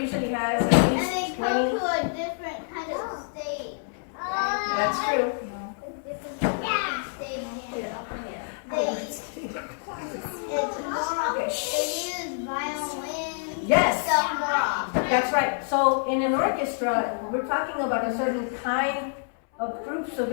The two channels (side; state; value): right; silent; 60 dB below the other